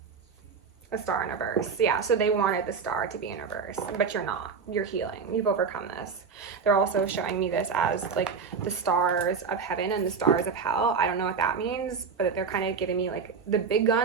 A Star in reverse. Yeah, so they wanted the Star to be in reverse, but you're not. You're healing. You've overcome this. They're also showing me this as like the stars of heaven and the stars of hell. I don't know what that means, but they're kind of giving me like the big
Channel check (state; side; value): quieter; left; 5.6 dB